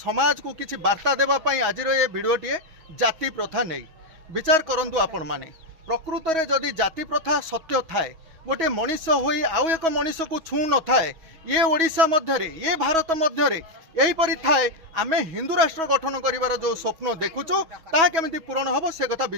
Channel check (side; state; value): left; late; 6.2 ms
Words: को किसी वार्ता देवाई आज ये भिडटे जाति प्रथा नहीं विचार करूँ आपण मैंने प्रकृत में जदि जाति प्रथा सत्य थाए गोटे मनीष होई आउ एक मनीष को छू न थाए ये ओडिशा मध्य ये भारत मध्य यहीपरी थाए आमे हिंदू राष्ट्र गठन करिवार जो स्वप्न देखुचु ताहा केमिति पूरण हबो से कथा